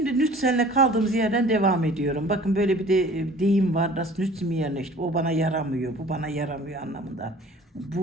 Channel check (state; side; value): normal; both; correlation 0.48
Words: nütsenle kaldığımız yerden devam ediyorum. Bakın böyle bir de deyim var. Das nützt mir nicht. O bana yaramıyor. Bu bana yaramıyor anlamında.